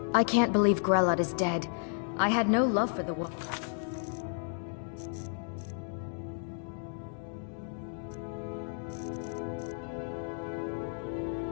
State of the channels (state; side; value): silent; right; 56 dB below the other